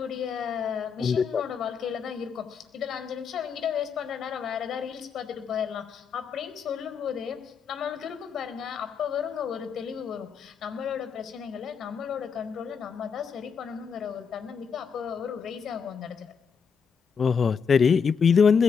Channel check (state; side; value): quieter; right; 6.3 dB